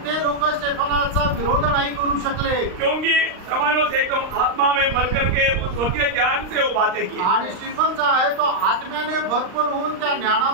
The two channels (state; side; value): late; left; 39 ms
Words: ते लोक स्टेफनाचा विरोध नाही करू शकले क्योंकि स्तेफानोस एकदम आत्मा में भर करके उस स्वर्गीय ज्ञान से वो बातें की. आणि स्टीफन जो आहे तो आत्म्याने भरपूर होऊन त्या